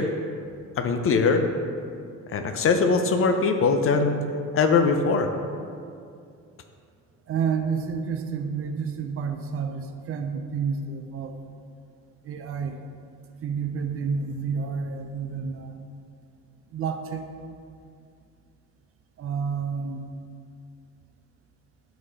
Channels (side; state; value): both; normal; correlation 0.21